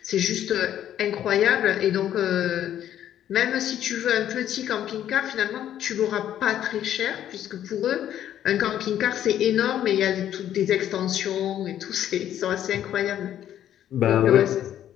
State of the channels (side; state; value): right; quieter; 11.0 dB